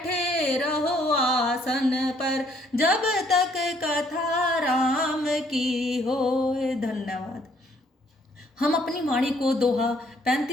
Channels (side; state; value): both; normal; correlation 0.65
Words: रहो आसन पर, जब तक कथा राम की होय। धन्यवाद। हम अपनी वाणी को दोहा